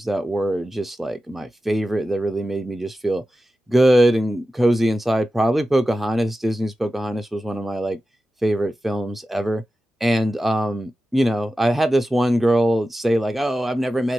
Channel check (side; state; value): both; normal; correlation 0.93